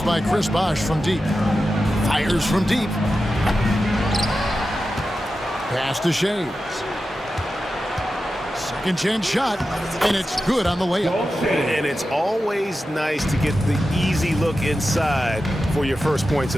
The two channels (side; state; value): both; normal; correlation 0.92